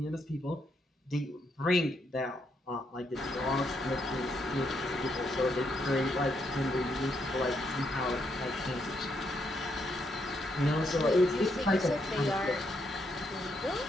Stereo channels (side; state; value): both; normal; correlation 0.77